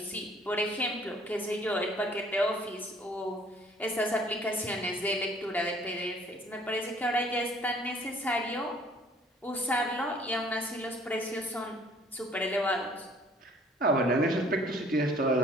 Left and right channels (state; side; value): normal; both; correlation 0.56